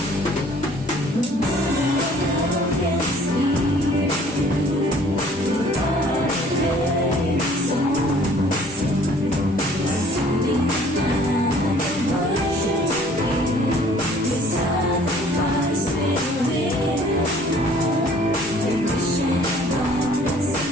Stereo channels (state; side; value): normal; both; correlation 0.55